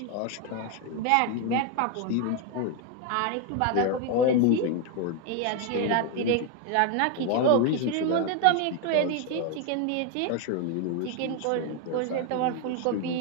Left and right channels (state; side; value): different; both; correlation 0.01